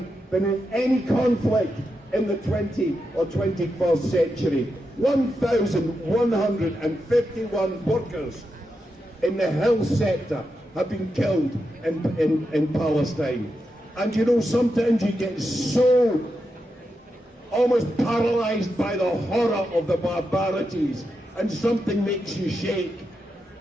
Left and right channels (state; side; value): normal; both; correlation 0.87